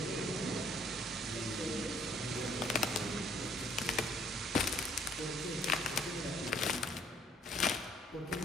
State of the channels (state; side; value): normal; both; correlation 0.62